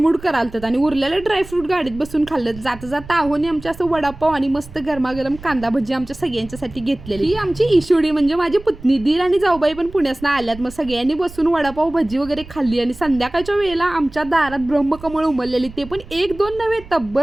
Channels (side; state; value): right; noise; rumble, 17 dB below the sound